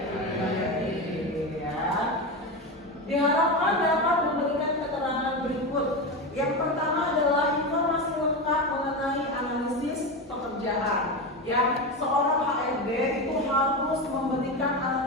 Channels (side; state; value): both; normal; correlation 0.18